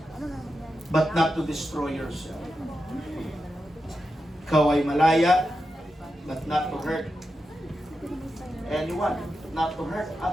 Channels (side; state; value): both; normal; correlation 0.89